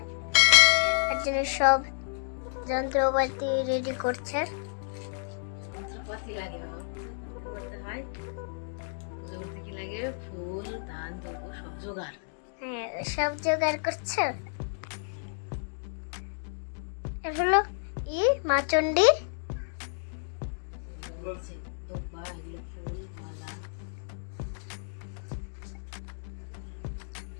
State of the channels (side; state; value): right; silent; digital silence